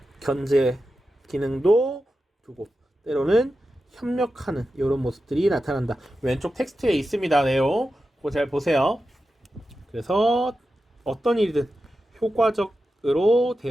견제 기능도 두고 때로는 협력하는 이런 모습들이 나타난다. 왼쪽 텍스트에 있습니다. 내용 그거 잘 보세요. 그래서 어떤 일이든 효과적으로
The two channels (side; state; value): both; normal; correlation 0.91